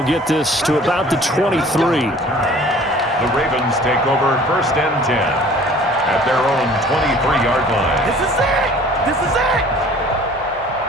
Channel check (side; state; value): both; normal; correlation 0.50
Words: get this to about the 23. The Ravens take over 1st and 10 at their own 23-yard line. This is it! This is it!